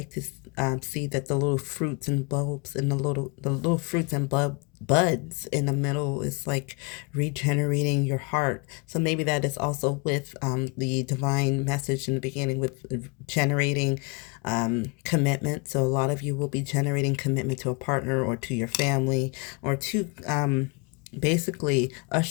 to see, that the little fruits and bulbs and the little fruits and buds in the middle is like regenerating your heart. So maybe that is also with the divine message in the beginning, with generating commitment. So a lot of you will be generating commitment to a partner or to your family, or to basically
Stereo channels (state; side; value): quieter; right; 31.3 dB